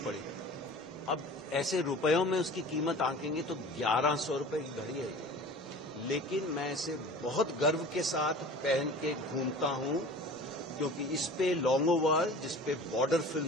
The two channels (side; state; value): both; normal; correlation 0.40